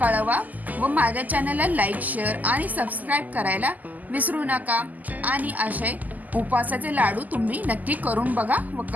कळवा व माझ्या चॅनलला लाईक, शेअर आणि सबस्क्राईब करायला विसरू नका. आणि असे उपवासाचे लाडू तुम्ही नक्की करून बघा व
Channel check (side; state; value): left; late; 0.081 ms